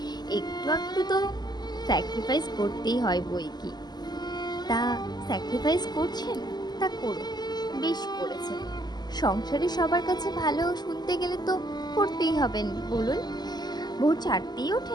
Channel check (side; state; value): right; late; 0.20 ms